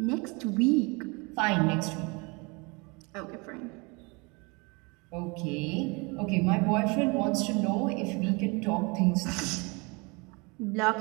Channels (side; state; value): left; quieter; 28.7 dB